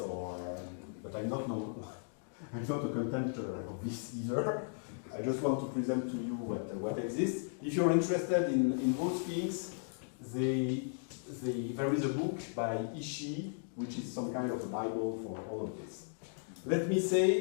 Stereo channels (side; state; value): right; silent; digital silence